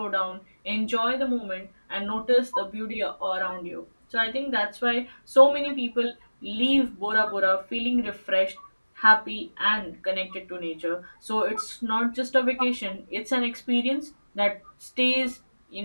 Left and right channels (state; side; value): inverted; both; correlation -1.00